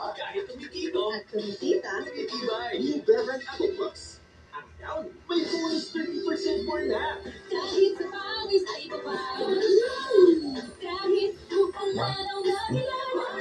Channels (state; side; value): identical; both; correlation 1.00